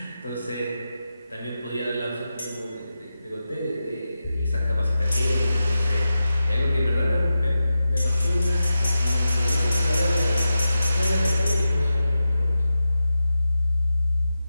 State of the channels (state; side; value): inverted; both; correlation -0.91